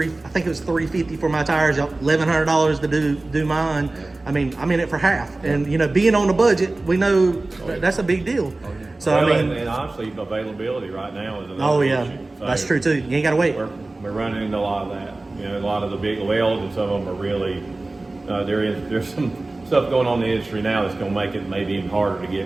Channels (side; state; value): left; quieter; 3.0 dB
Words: think it was $350 for my tires, $1,100 to do mine. I mean, I'm in it for half. And, being on the budget, we know that's a big deal. So, and honestly, availability right now is another issue. So that's true too. You ain't got to wait. We're running into a lot of that. A lot of the big welds, and some of them are really, there's some stuff going on in the industry now that's going to make it maybe even harder to